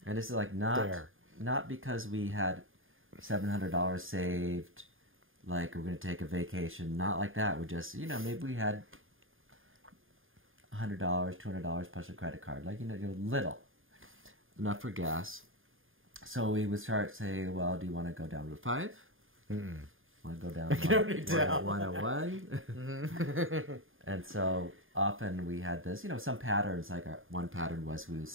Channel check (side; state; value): left; late; 0.59 ms